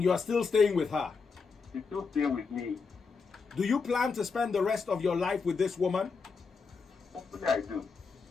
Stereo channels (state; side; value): quieter; right; 5.0 dB